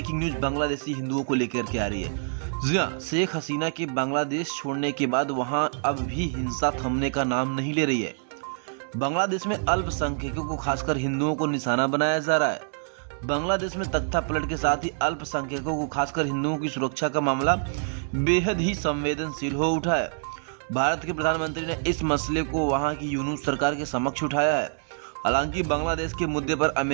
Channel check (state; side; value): silent; left; digital silence